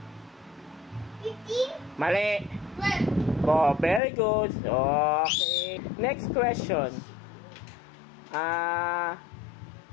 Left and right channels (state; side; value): drops out; right; at 4.0 s